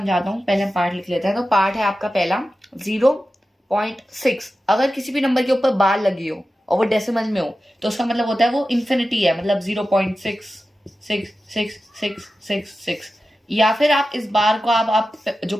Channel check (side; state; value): both; normal; correlation 0.93